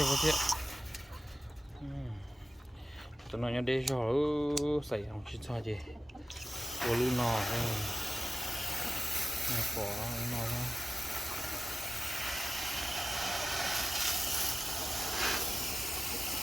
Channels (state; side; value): normal; both; correlation 0.95